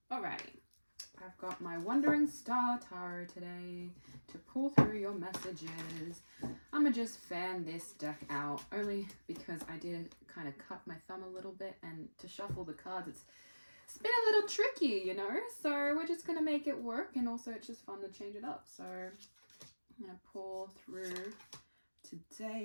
Alrighty. I've got my Wandering Star Tarot today to pull through your messages. I'm gonna just fan this deck out, only because I did kind of cut my thumb a little bit, and to shuffle the cards, it's been a little tricky, you know? So we're just gonna make it work, and also it's just fun to change it up. So I'm going to pull through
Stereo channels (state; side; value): inverted; both; correlation -1.00